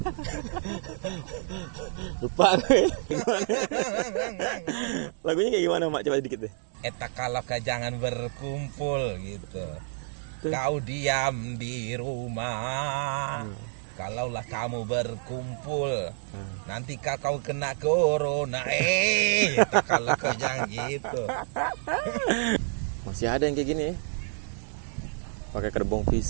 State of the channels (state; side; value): silent; left; digital silence